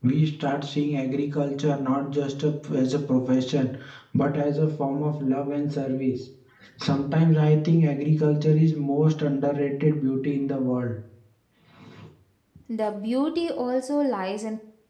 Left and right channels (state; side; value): identical; both; correlation 1.00